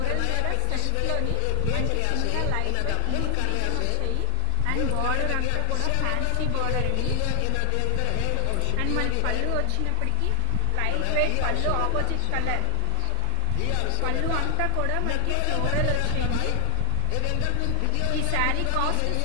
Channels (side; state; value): both; different; correlation 0.00